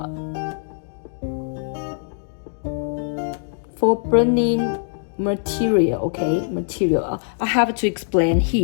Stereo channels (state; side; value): silent; right; digital silence